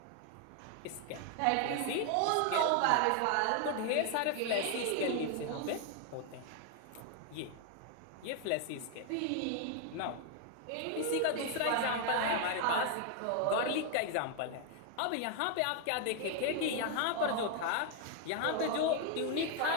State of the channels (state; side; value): different; both; correlation 0.00